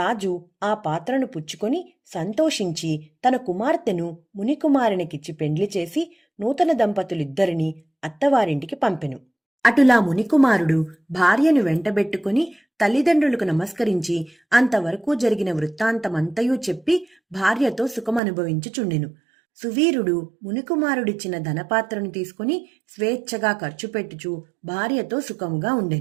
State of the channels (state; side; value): drops out; left; at 18.2 s